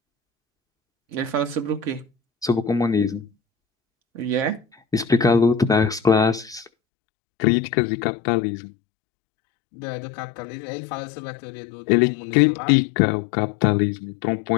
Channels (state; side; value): drops out; right; at 6.7 s